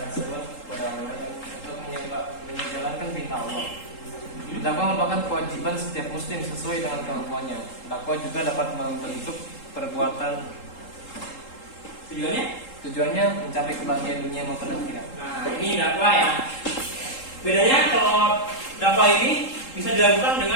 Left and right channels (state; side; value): late; right; 3.8 ms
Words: seruan kepada orang lain untuk menjalankan perintah Allah. Dakwah merupakan kewajiban setiap muslim sesuai dengan kemampuannya. Dakwah juga dapat membentuk perbuatan. Tujuannya mencapai kebahagiaan dunia maupun akhirat. Nah, ini dakwah ya. Bedanya kalau dakwah ini bisa dilakukan